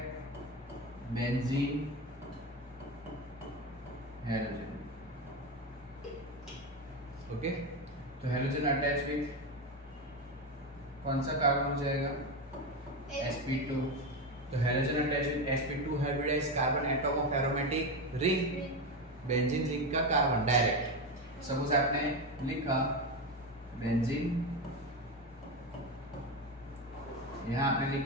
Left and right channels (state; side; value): normal; both; correlation 0.16